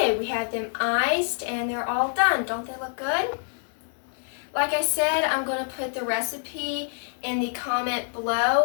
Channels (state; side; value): silent; right; digital silence